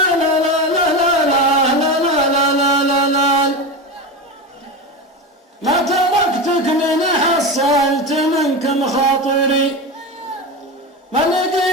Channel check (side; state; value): both; normal; correlation 0.22